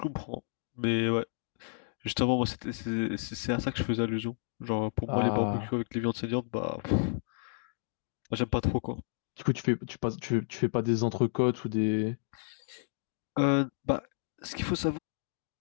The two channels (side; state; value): right; silent; digital silence